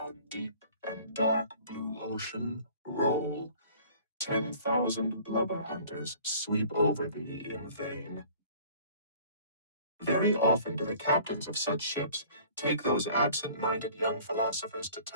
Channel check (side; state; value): both; inverted; correlation -0.50